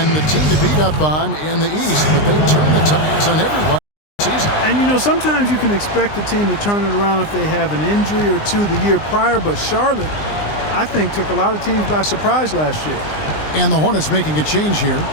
the team to beat up on in the East, but they turned the tides on everyone this season. And, you know, sometimes you can expect the team to turn it around if they have an injury or two the year prior, but Charlotte, I think, took a lot of teams by surprise last year. And the Hornets making a change here.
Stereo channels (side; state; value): right; late; 20 ms